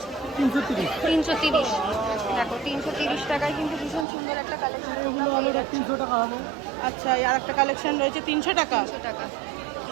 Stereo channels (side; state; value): left; drops out; at 4.0 s